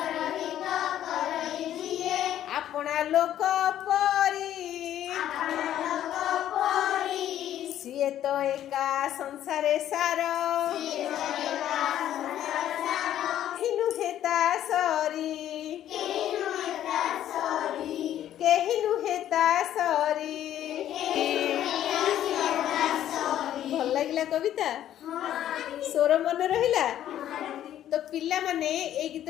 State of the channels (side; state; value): right; quieter; 11.6 dB